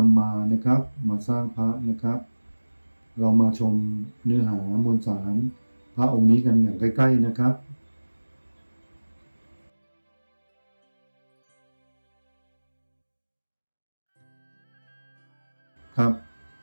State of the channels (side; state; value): both; inverted; correlation -1.00